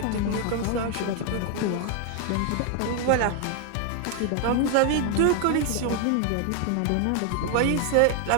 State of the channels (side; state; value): both; different; correlation 0.01